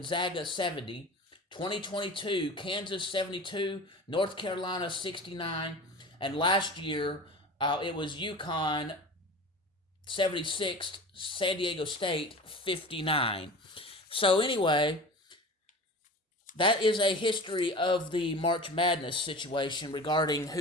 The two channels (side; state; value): both; normal; correlation 0.35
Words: 70. 2022, Kansas 72, North Carolina 69. And last year, it was UConn 76, San Diego State 59. So anyway, that is a history of the March Madness situation regarding